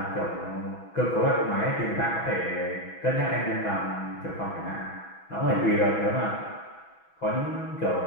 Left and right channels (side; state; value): right; late; 6.1 ms